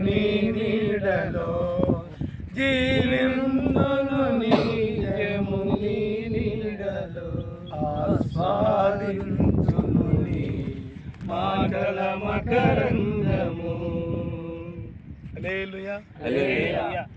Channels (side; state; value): both; identical; correlation 1.00